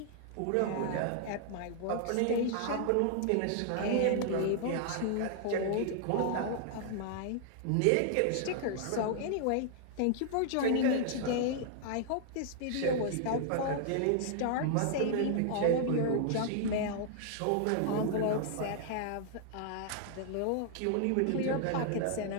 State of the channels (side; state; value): both; different; correlation -0.01